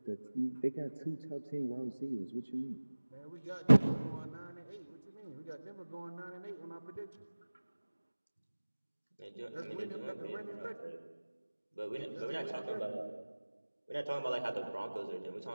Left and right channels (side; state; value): both; inverted; correlation -1.00